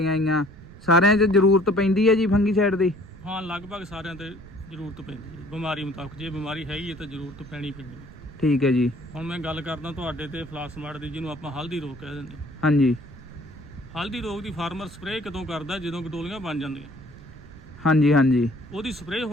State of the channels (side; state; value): right; noise; rumble, 18 dB below the sound